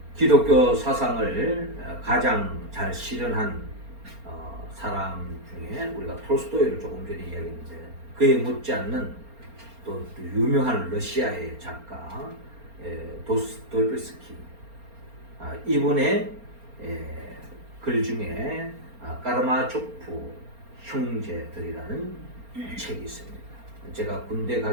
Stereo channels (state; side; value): late; left; 4.3 ms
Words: 기독교 사상을 가장 잘 실현한 사람 중에 우리가 톨스토이를 조금 전에 이야기했는데 그에 못지않는 또 유명한 러시아의 작가 도스토옙스키 이분의 글 중에 까라마초프 형제들이라는 책이 있습니다. 제가 군대